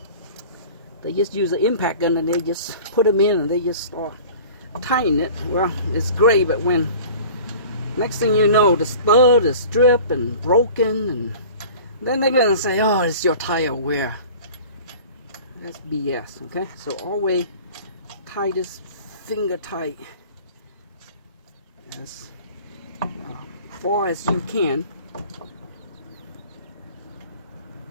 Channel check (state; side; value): inverted; both; correlation -0.42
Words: they just use an impact gun and they just put them in and they just start tying it. Well, it's great, but when next thing you know, the stud is stripped and broken, and then they're gonna say, oh, it's your tire wear. That's BS, okay? So always tie this finger tight as far as you can.